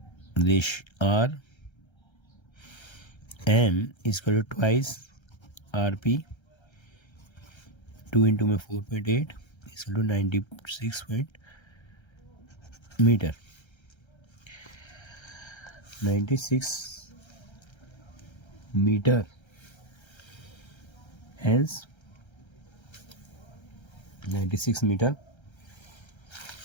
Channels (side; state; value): right; late; 1.3 ms